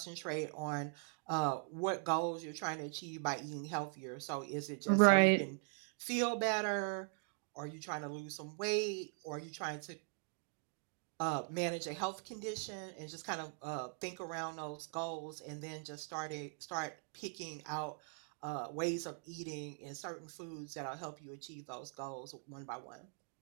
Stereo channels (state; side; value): silent; left; 50 dB below the other